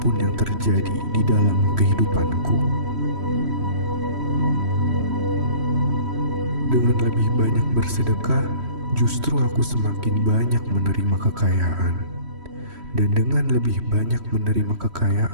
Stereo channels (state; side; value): late; left; 3.1 ms